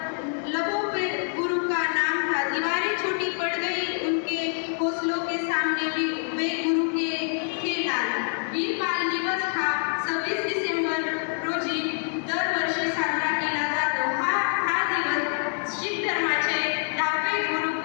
लबों पे गुरु का नाम था, दीवारें छोटी पड़ गई उनके हौसलों के सामने वे गुरु के थे लाल। वीर बाल दिवस हा 26 डिसेंबर रोजी दरवर्षी साजरा केला जातो। हा दिवस शीख धर्माचे 10वे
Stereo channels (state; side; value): silent; right; 61 dB below the other